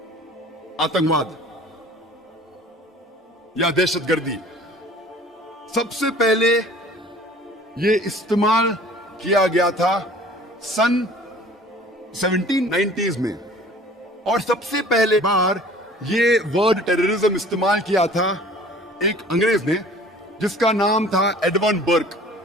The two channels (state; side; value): normal; both; correlation 0.48